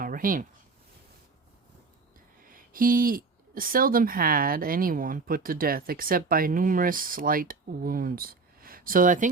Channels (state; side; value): quieter; left; 4.2 dB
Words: He seldom had anyone put to death except by numerous slight wounds. So I